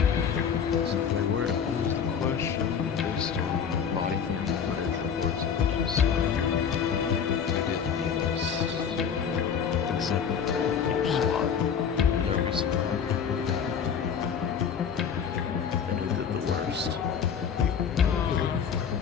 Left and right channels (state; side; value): quieter; right; 7.3 dB